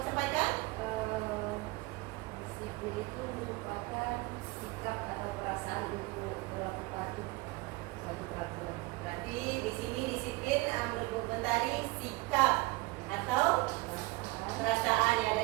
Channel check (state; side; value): quieter; left; 23.1 dB